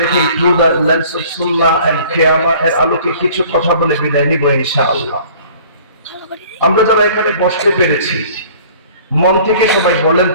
রেখে through the lens of Sunnah and কিয়ামা এর আলোকে কিছু কথা বলে বিদায় নিব ইনশাআল্লাহ। আমরা যারা এখানে বসতে পেরেছি, মন থেকে সবাই বলেন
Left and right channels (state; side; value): inverted; both; correlation -0.50